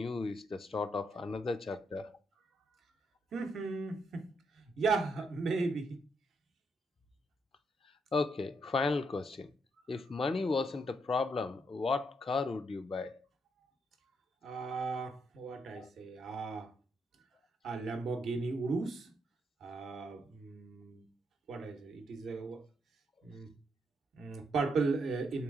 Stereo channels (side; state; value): both; normal; correlation 0.78